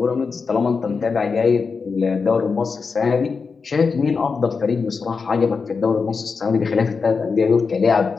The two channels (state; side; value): quieter; right; 5.0 dB